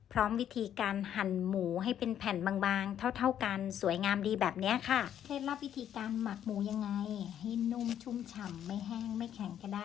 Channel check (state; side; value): quieter; right; 10.1 dB